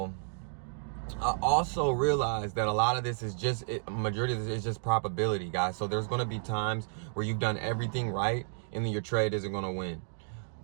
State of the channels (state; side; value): silent; left; digital silence